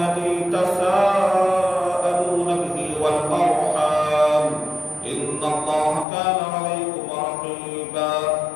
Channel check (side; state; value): right; drops out; at 6.1 s